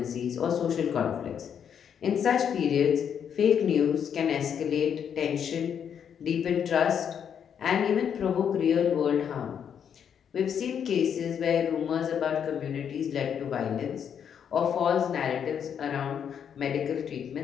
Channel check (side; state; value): right; quieter; 8.1 dB